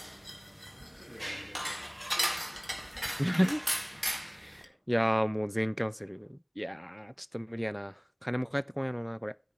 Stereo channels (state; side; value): identical; both; correlation 1.00